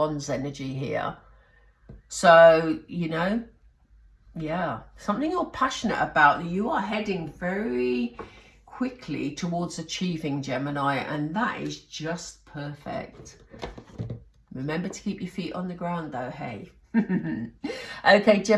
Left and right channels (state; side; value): identical; both; correlation 1.00